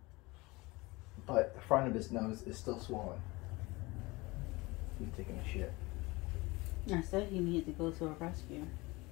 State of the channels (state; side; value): quieter; right; 23.0 dB